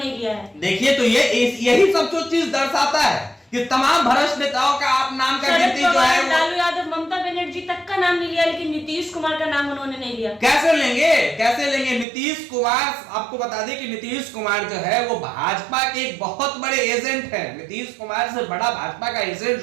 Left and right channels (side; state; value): left; drops out; at 12.1 s